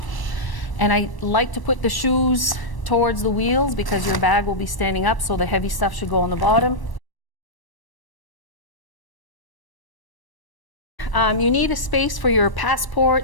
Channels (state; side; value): late; right; 1.0 ms